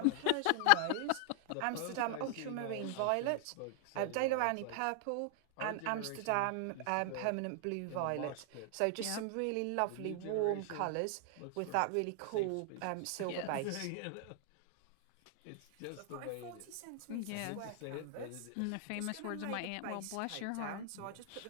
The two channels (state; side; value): different; both; correlation 0.00